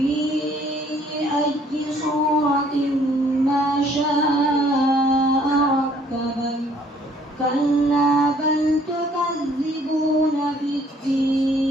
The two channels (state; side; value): normal; both; correlation 0.61